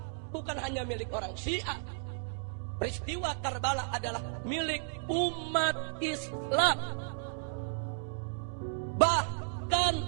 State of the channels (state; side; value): silent; left; digital silence